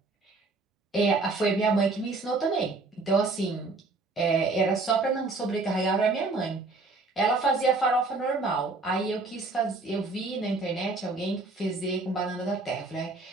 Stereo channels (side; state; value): left; quieter; 3.5 dB